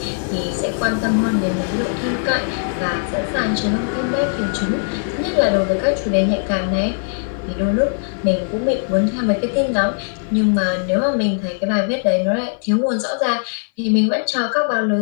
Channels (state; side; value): silent; right; 57 dB below the other